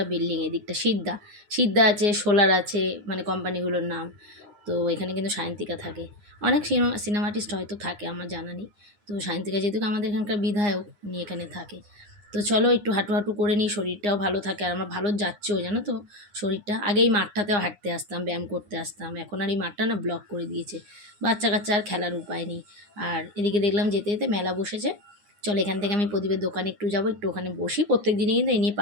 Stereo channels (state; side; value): late; left; 9.7 ms